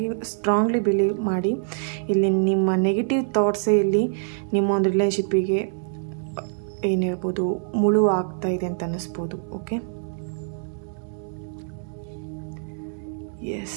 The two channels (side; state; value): left; silent; 62 dB below the other